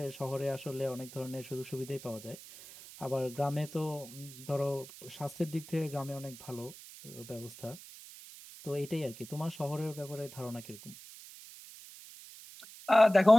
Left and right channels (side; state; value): right; noise; hiss, 16 dB below the sound